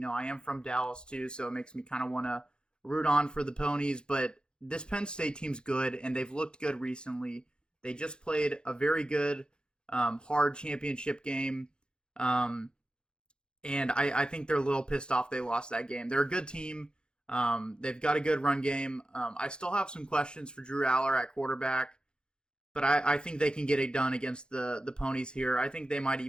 I am from Dallas too, so it makes me kind of want to root on for the Ponies. But this Penn State team's good, and they've looked good recently. They just played a very good, hard championship game. And I think they're a little pissed off they lost that game. They're a good team. They've got a good run game. I still have some questions for Drew Aller at quarterback, but I think they can get it done against the Ponies here. I think they might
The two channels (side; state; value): right; late; 0.049 ms